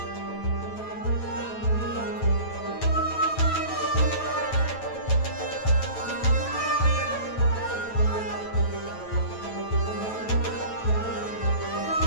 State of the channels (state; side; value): late; right; 9.1 ms